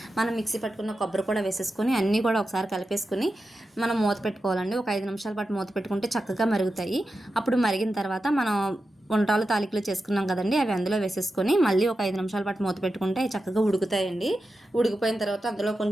మనం మిక్సీ పట్టుకున్న కొబ్బరి కూడా వేసేసుకొని అన్నీ కూడా ఒకసారి కలిపేసుకొని మనం మూత పెట్టుకోవాలండి. ఒక 5 నిమిషాల పాటు మూత పెట్టుకుంటే చక్కగా మరుగుతాయి. అప్పుడు మరిగిన తర్వాత మనం ఉండ్రాలు తాలికలు చేసుకున్నాం కదండి, అవి అందులో వేసేసుకొని మళ్ళీ ఒక 5 నిమిషాల పాటు మూత పెట్టుకుంటే అవి చక్కగా ఉడుకుతాయండి. ఉడికిపోయిన తర్వాత అందులో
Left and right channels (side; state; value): both; normal; correlation 0.91